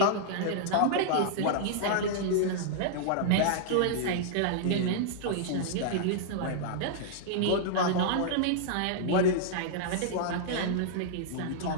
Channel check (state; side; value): different; both; correlation -0.01